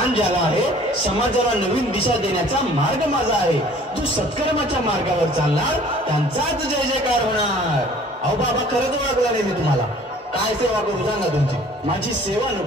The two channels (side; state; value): both; normal; correlation 0.52